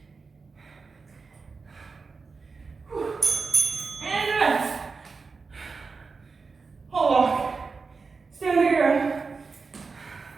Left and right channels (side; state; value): left; quieter; 4.6 dB